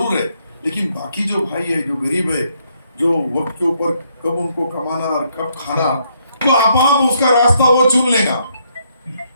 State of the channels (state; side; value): inverted; both; correlation -0.73